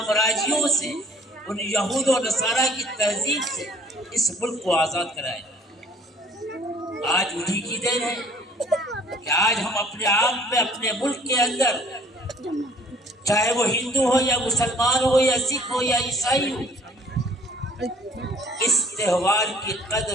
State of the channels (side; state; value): both; normal; correlation 0.55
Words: سے، ان یہود و نصارہ کی تہذیب سے اس ملک کو آزاد کرائے۔ آج انہی کی دین ہے کہ آج ہم اپنے آپ میں، اپنے ملک کے اندر، چاہے وہ ہندو ہو یا مسلمان ہو یا سکھ ہو یا عیسائی ہو، اس تہوار کی